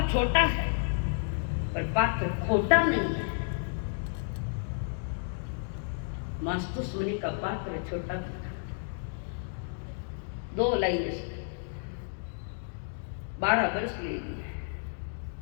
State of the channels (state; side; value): silent; right; digital silence